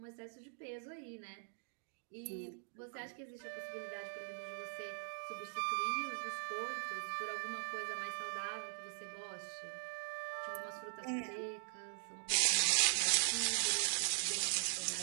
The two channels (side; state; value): left; silent; digital silence